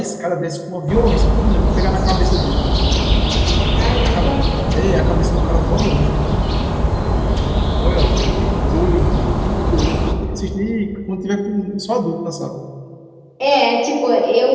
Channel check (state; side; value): identical; both; correlation 1.00